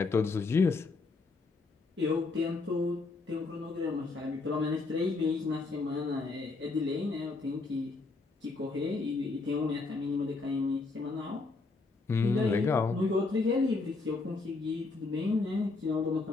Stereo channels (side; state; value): right; quieter; 3.9 dB